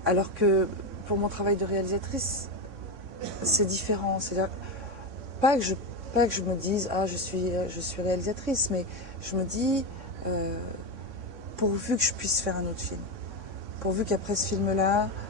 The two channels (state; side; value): late; left; 3.6 ms